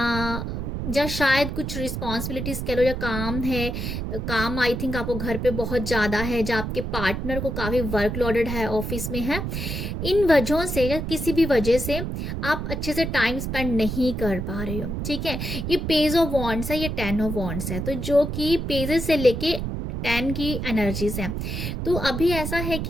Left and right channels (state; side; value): noise; right; rumble, 4 dB below the sound